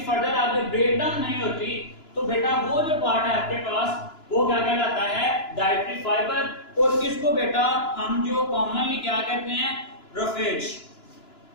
फर्दर आगे ब्रेकडाउन नहीं होती, तो बेटा वो जो पार्ट है आपके पास वो क्या कहलाता है, डाइटरी फाइबर। और इसको बेटा हम जो कॉमनली क्या कहते हैं, रफेज।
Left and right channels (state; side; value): late; right; 2.9 ms